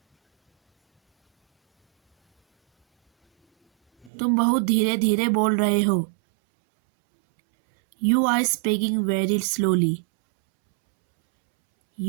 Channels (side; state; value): left; drops out; at 4.1 s